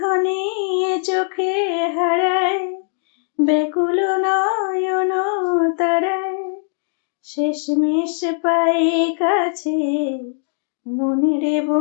চোখে হারায় ব্যাকুল নয়ন তারায়, শেষমেশ পাই কাছে মনের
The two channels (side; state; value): right; silent; digital silence